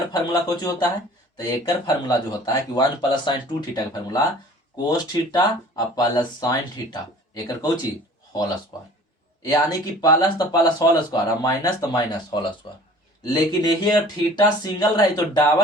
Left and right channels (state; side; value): normal; both; correlation 0.48